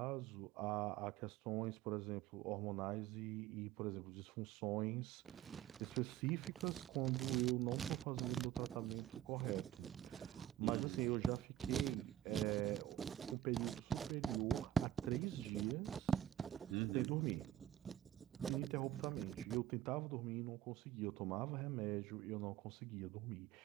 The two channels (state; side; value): quieter; left; 12.2 dB